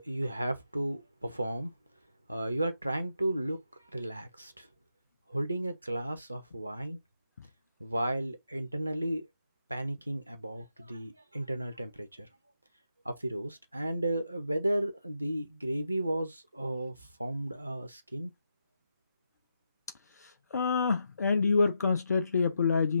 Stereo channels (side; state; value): both; inverted; correlation -0.84